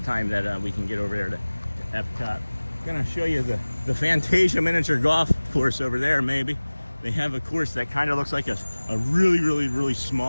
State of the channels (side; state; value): both; inverted; correlation -1.00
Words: time that we can get over there to EPCOT. I'm gonna show you the Fantasia miniature golf course over there, maybe. They have a course that kind of looks like a really